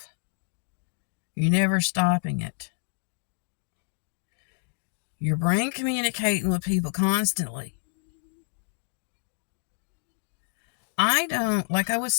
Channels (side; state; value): right; silent; digital silence